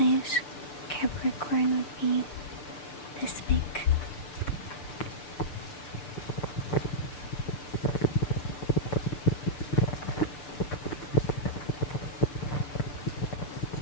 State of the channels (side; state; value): right; late; 6.8 ms